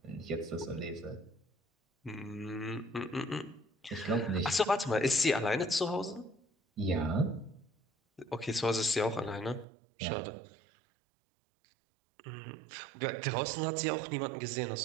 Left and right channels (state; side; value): drops out; left; at 9.7 s